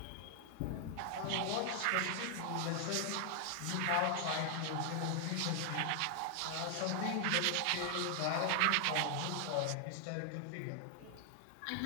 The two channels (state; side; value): different; both; correlation 0.00